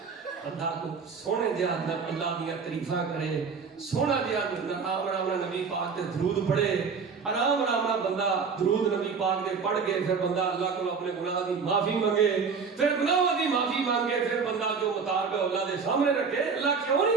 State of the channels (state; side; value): quieter; left; 5.5 dB